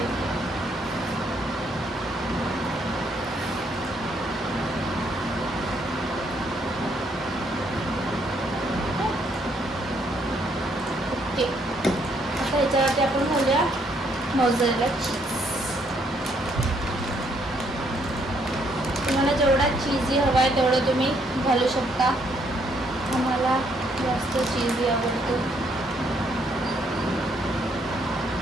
आता ह्याच्यावरती आपण घालूया मोझरेला चीज. तुम्हाला जेवढा चीजी हवा आहे तेवढं तुम्ही घालू शकता. आम्हाला जास्त चीजी आवडतो,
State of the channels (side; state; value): both; normal; correlation 0.71